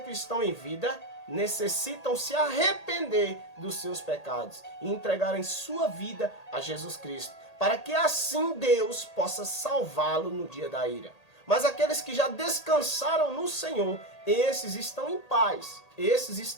estão em vida necessitam se arrepender dos seus pecados e entregarem sua vida a Jesus Cristo, para que assim Deus possa salvá-lo no dia da ira. Mas aqueles que já descansaram no Senhor, esses estão em paz. Esses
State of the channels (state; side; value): late; right; 1.8 ms